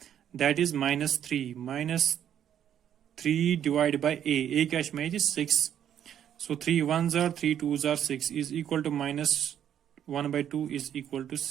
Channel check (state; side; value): quieter; left; 9.8 dB